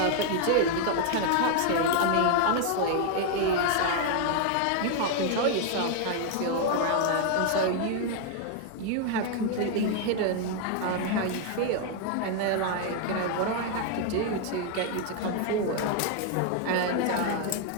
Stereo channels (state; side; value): different; both; correlation 0.00